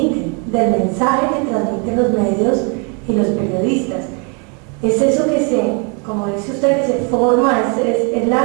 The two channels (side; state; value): left; quieter; 35.3 dB